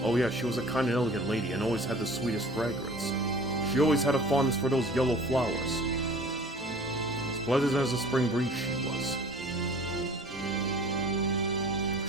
Oh yeah, she was a kind and elegant lady and always had the sweetest fragrance. She always had a fondness for those yellow flowers. As pleasant as a spring breeze she was.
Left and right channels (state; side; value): normal; both; correlation 0.46